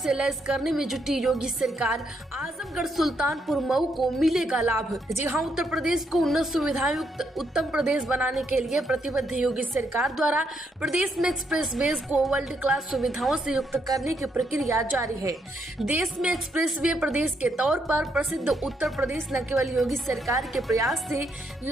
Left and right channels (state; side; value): normal; both; correlation 0.76